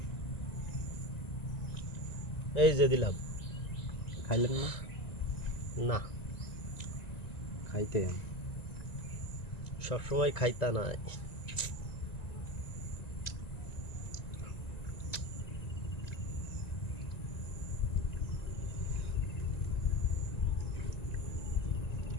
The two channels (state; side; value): late; right; 1.9 ms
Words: এই যে দিলাম। খাইলেন না? না, খাইতেন। সবসময় খাইতা নাই।